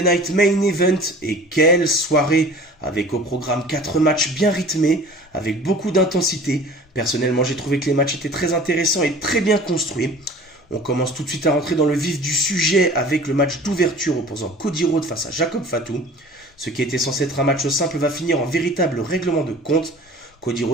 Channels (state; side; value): normal; both; correlation 0.44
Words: Main Event. Et quelle soirée, avec au programme 4 matchs bien rythmés, avec beaucoup d'intensité. Personnellement, j'ai trouvé que les matchs étaient très intéressants et très bien construits. On commence tout de suite à rentrer dans le vif du sujet avec le match d'ouverture opposant Cody Rhodes face à Jacob Fatu. Ce qui était censé être un match simple va finir en véritable règlement de compte. Cody